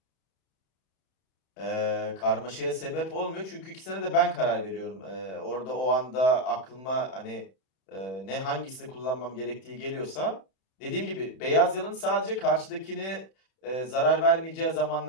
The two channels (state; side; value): late; right; 31 ms